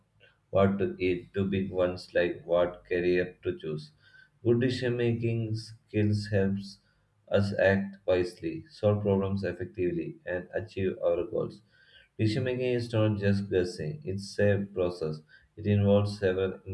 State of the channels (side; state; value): both; identical; correlation 1.00